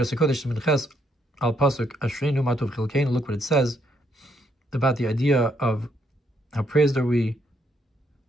what it says about the idea of how praised are we,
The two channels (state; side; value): normal; both; correlation 0.73